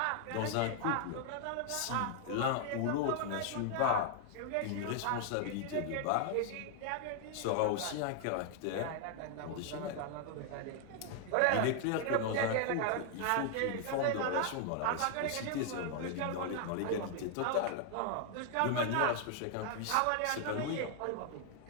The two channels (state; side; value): different; both; correlation 0.00